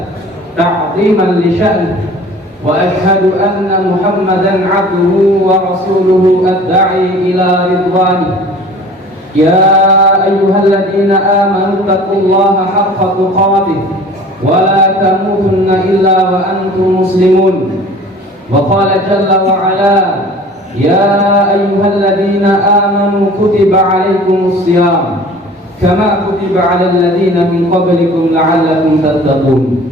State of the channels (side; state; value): both; normal; correlation 0.45